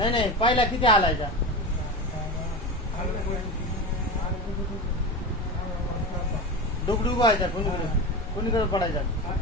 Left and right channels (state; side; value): normal; both; correlation 0.24